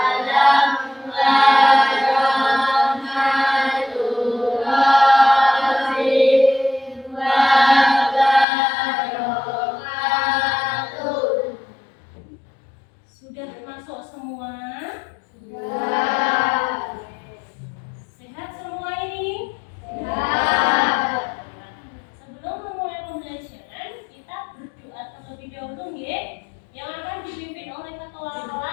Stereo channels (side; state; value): right; drops out; at 8.5 s